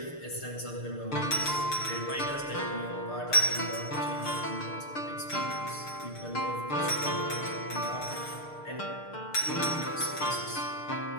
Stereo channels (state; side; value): late; right; 6.6 ms